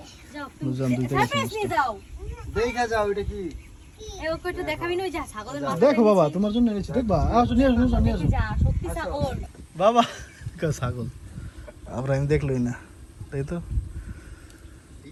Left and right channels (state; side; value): identical; both; correlation 1.00